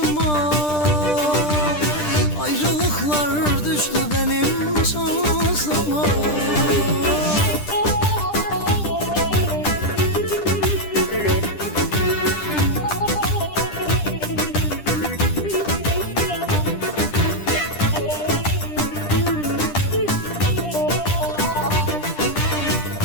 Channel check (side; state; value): right; late; 10 ms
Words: ayrılıklar düştü benim şansıma.